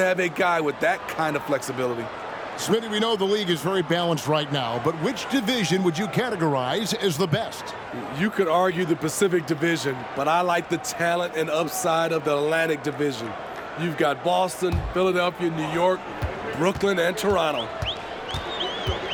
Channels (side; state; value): both; identical; correlation 1.00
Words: have a guy with that kind of flexibility. Smitty, we know the league is very balanced right now, but which division would you categorize as the best? You could argue the Pacific Division, but I like the talent and upside of the Atlantic Division. You've got Boston, Philadelphia, New York, Brooklyn, and Toronto.